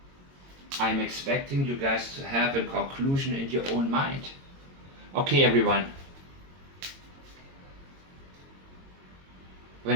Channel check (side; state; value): left; late; 22 ms